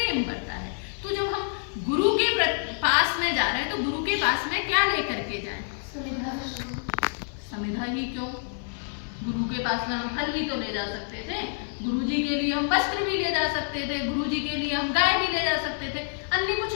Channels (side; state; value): right; silent; 60 dB below the other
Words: बढ़ता है। तो जब हम गुरु के पास में जा रहे हैं तो गुरु के पास में क्या लेकर के जाएं? समिधा ही क्यों, गुरु के पास में हम फल भी तो ले जा सकते थे, गुरु जी के लिए हम वस्त्र भी ले जा सकते थे, गुरु जी के लिए हम गाय भी ले जा सकते थे, अन्य कुछ